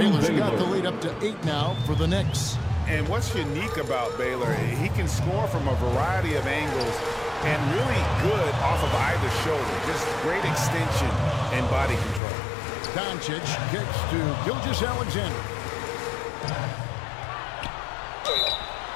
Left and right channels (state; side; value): drops out; right; at 12.2 s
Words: got the lead up to 8 now for the Knicks. And what's unique about Baylor, he can score from a variety of angles and really good off of either shoulder. Just great extension and body control. Doncic gets to Gilgeous-Alexander.